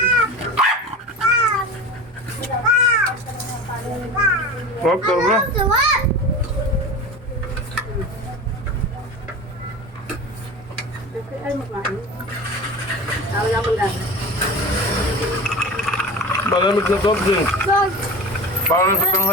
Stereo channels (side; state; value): both; normal; correlation 0.32